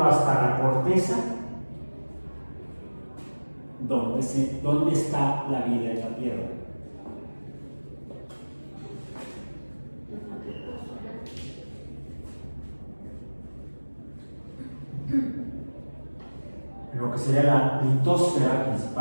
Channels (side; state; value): both; inverted; correlation -1.00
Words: hasta la corteza. ¿Dónde está la vida en la Tierra? Lo que sería la litosfera,